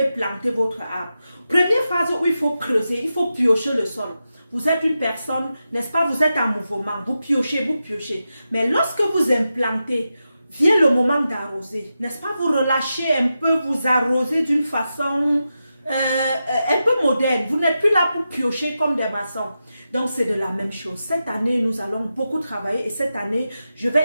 planter votre arbre. Première phase où il faut creuser, il faut piocher le sol. Vous êtes une personne, n'est-ce pas, vous êtes en mouvement, vous piochez. Mais lorsque vous implantez, vient le moment d'arroser, n'est-ce pas, vous relâchez un peu, vous arrosez d'une façon un peu moderne. Vous n'êtes plus là pour piocher comme des maçons. Donc, c'est de la même chose. Cette année, nous allons beaucoup travailler et cette année, je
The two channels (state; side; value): inverted; both; correlation -0.90